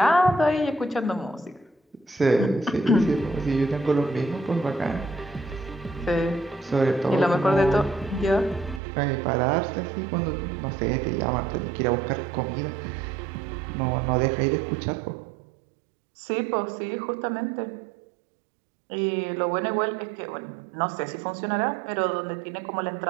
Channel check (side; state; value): left; drops out; at 8.8 s